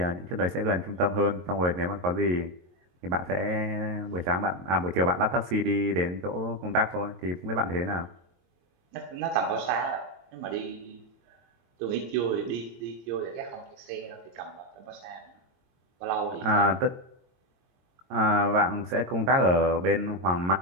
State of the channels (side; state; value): left; late; 22 ms